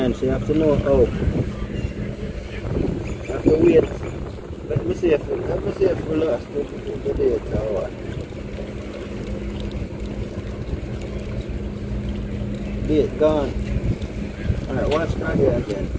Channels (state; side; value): identical; both; correlation 1.00